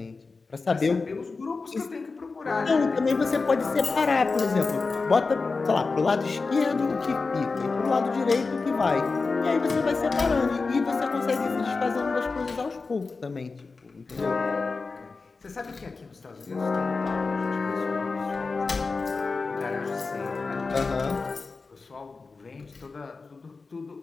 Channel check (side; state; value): right; quieter; 4.2 dB